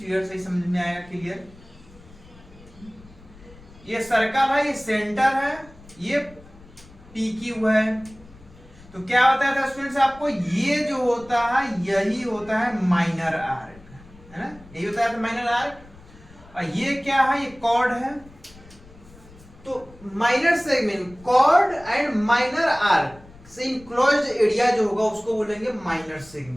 से ही समझ में आएगा क्लियर। ये सर्कल है, ये सेंटर है, ये पी क्यू है। तो क्या होता था स्टूडेंट्स आपको, ये जो होता है यही होता है माइनर आर्क, है ना, यही होता है माइनर आर्क। और ये क्या है, ये कॉर्ड है। तो minor segment, chord and minor arc से इनक्लोज्ड एरिया जो होगा उसको बोलेंगे माइनर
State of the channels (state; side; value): noise; left; rumble, 23 dB below the sound